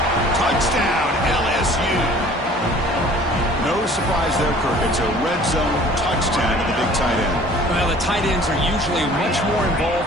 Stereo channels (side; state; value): both; normal; correlation 0.50